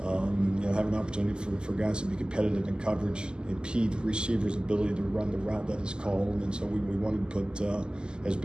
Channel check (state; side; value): late; left; 0.047 ms